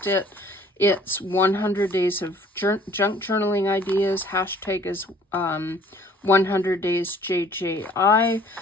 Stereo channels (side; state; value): both; normal; correlation 0.55